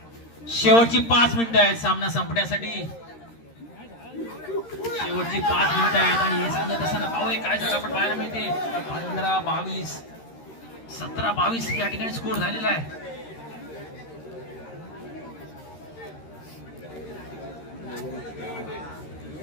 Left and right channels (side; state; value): right; late; 13 ms